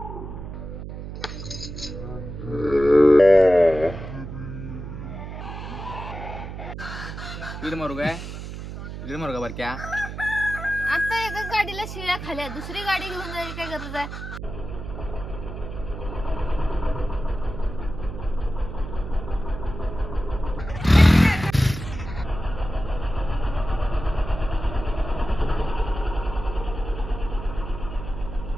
मारू काय मारू का बरं क्या? आता एका गाडीला शिव्या खाल्या, दुसरी गाडी घेऊन जायची काय गरज आहे?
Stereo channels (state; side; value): noise; right; hum, 9 dB below the sound